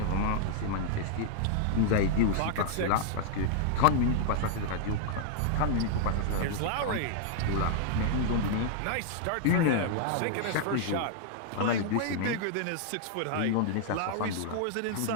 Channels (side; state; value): both; different; correlation -0.01